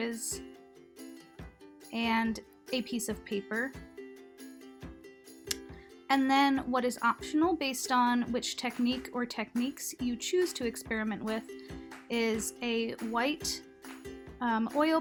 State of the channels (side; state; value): both; identical; correlation 1.00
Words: and a piece of paper. And then what is optional based on which technique or techniques you choose to experiment with is a white oil